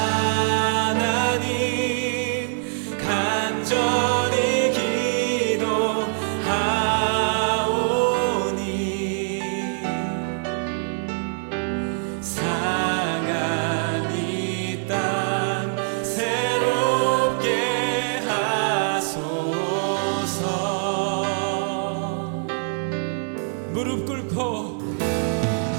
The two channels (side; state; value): left; silent; 61 dB below the other